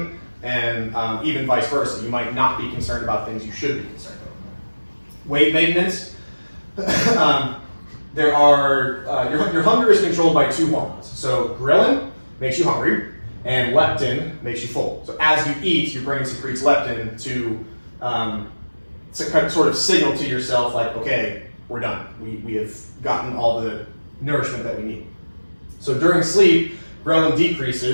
and even vice versa. You might not be concerned about things you should be concerned about. Weight maintenance. Your hunger is controlled by two hormones. So ghrelin makes you hungry, and leptin makes you full. So as you eat, your brain secretes leptin to kind of sort of signal to yourself like, okay, we're done. We have gotten all the nourishment that we need. So during sleep, ghrelin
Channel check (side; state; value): both; inverted; correlation -1.00